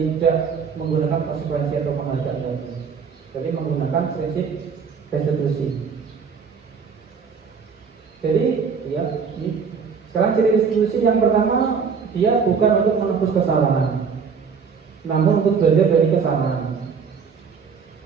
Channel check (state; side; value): quieter; left; 6.0 dB